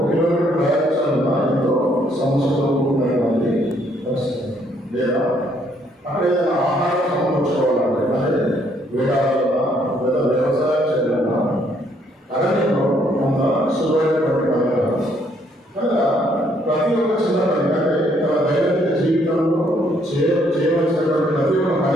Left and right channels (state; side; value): normal; both; correlation 0.68